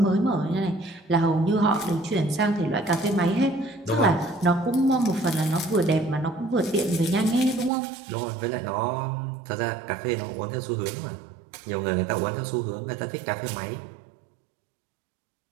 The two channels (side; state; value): left; drops out; at 7.7 s